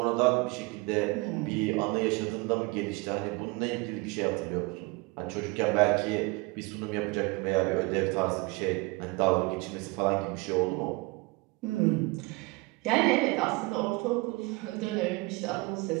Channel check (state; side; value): quieter; left; 25.7 dB